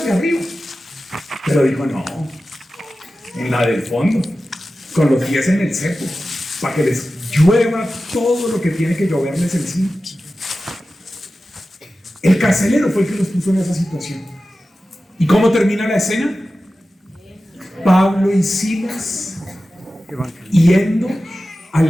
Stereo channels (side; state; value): both; normal; correlation 0.94